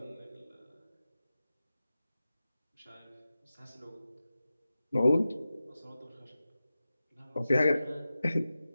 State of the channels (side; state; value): both; inverted; correlation -0.94